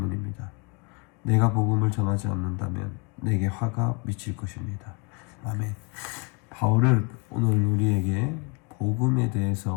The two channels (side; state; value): right; quieter; 30.9 dB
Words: 내가 복음을 전하지 않는다면 내게 화가 미칠 것입니다. 아멘. 바울은 오늘 우리에게 복음에